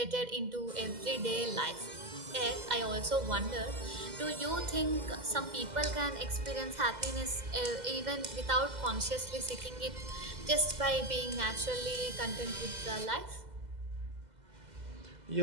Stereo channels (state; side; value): late; left; 2.0 ms